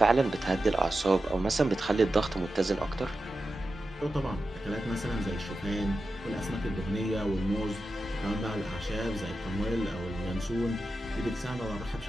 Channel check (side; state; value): both; normal; correlation 0.91